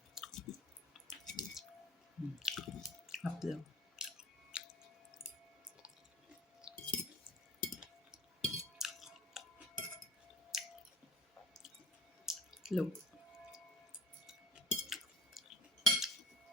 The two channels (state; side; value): normal; both; correlation 0.50